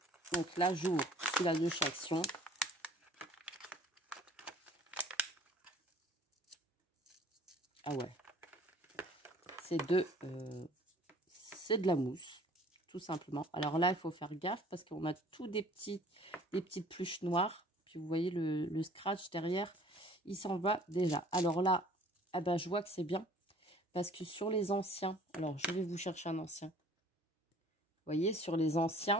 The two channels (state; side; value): normal; both; correlation 0.52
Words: Donc là, j'ouvre celui-là de chez Action. Ah ouais, c'est de la mousse, tout simplement. Alors là, il faut faire gaffe parce qu'on a tout des petites pluches noires. Puis vous voyez le scratch derrière, il s'en va déjà. Alors là, ah ben, je vois que c'est bien parce que sur les anciens, alors je vais vous chercher un ancien. Vous voyez, sur les